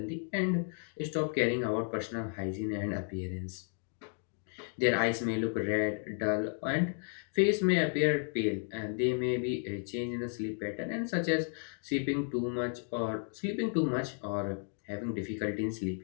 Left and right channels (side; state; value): right; silent; 56 dB below the other